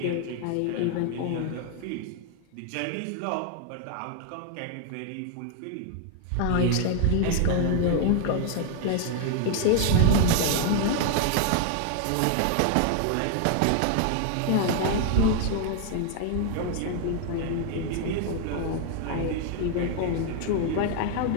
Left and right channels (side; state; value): both; different; correlation 0.00